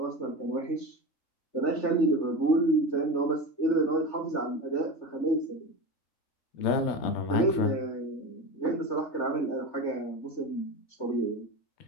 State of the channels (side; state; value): right; late; 3.4 ms